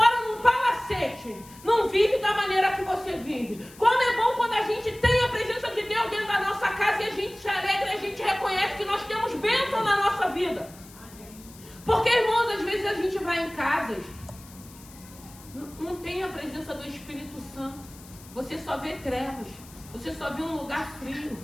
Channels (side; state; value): left; noise; hiss, 21 dB below the sound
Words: num palacete não vivem da maneira que você vive. Como é bom quando a gente tem a presença de Deus dentro da nossa casa e a gente se alegra e a gente reconhece que nós temos bênção na nossa vida. Porque, irmãos, às vezes a gente vai em casas, não tem a presença do Espírito Santo. Você só vê trevas. Você só vê um lugar frio.